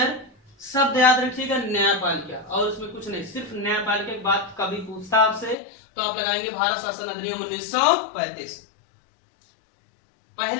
शब्द याद रखिएगा, न्यायपालिका, और उसमें कुछ नहीं, सिर्फ न्यायपालिका की बात कभी पूछता आपसे तो आप लगाएंगे भारत शासन अधिनियम 1935।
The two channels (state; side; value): drops out; right; at 5.6 s